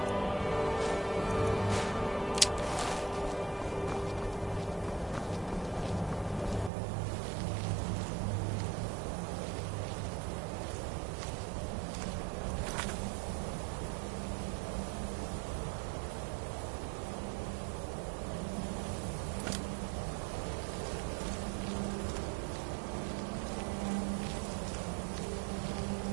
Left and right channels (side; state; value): left; drops out; at 6.7 s